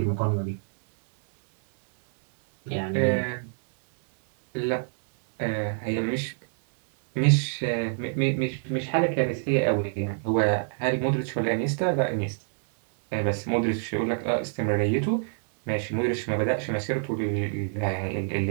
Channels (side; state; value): left; silent; 59 dB below the other